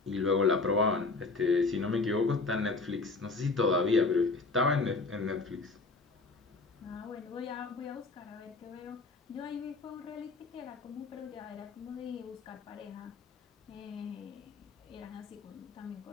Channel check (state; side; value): quieter; right; 3.8 dB